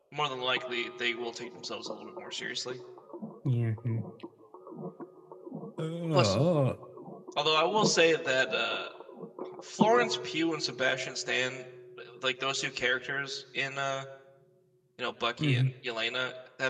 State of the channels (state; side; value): identical; both; correlation 1.00